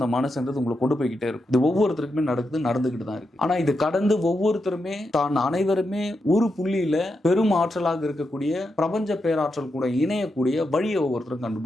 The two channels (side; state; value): both; normal; correlation 0.86